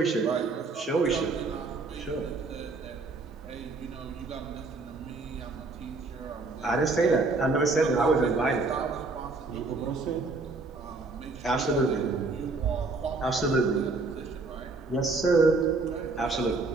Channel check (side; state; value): left; quieter; 3.6 dB